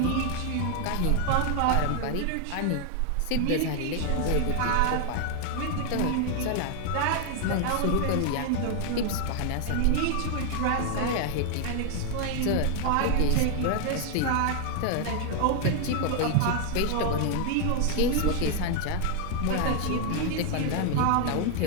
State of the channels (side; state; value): both; different; correlation 0.00